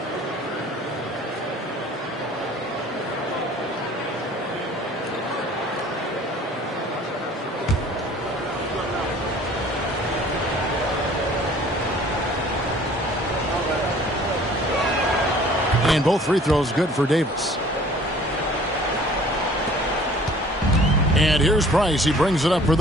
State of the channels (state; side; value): normal; both; correlation 0.51